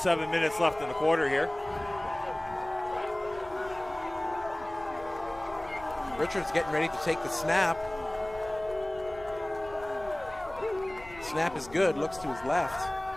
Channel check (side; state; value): left; noise; rumble, 18 dB below the sound